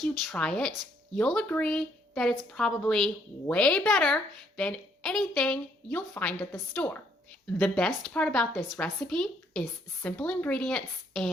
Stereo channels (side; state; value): both; normal; correlation 0.69